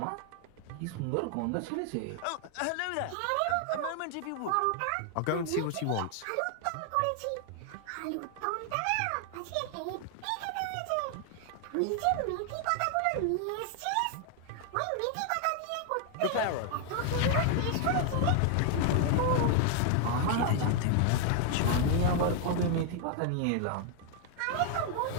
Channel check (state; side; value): different; both; correlation 0.00